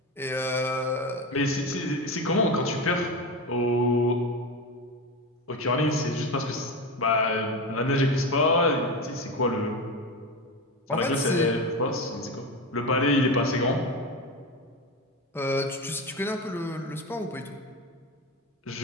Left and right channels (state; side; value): normal; both; correlation 0.21